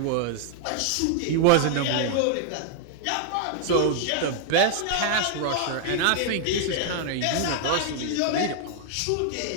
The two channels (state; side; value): different; both; correlation 0.00